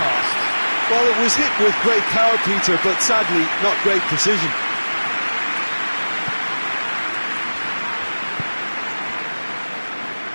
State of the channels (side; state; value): both; inverted; correlation -1.00